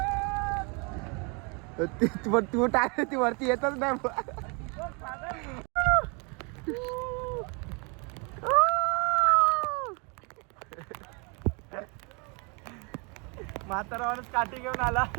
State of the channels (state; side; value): quieter; left; 33.0 dB